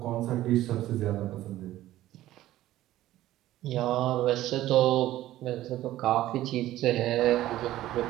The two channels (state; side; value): quieter; left; 14.6 dB